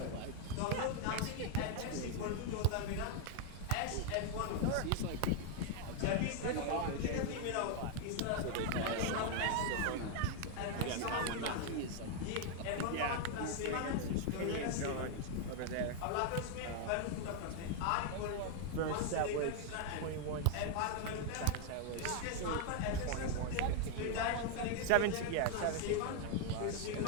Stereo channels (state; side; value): different; both; correlation 0.00